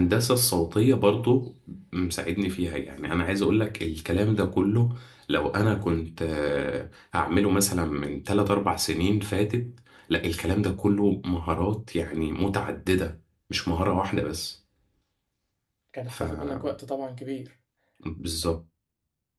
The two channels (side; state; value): both; identical; correlation 1.00